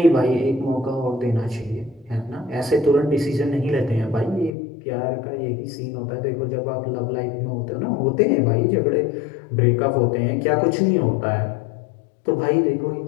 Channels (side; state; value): right; drops out; at 4.5 s